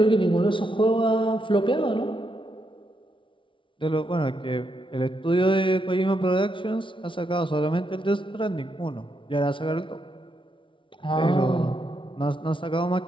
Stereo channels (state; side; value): late; right; 0.25 ms